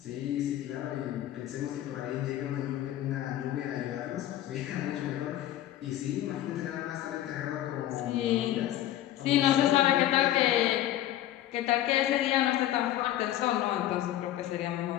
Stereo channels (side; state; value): right; quieter; 13.2 dB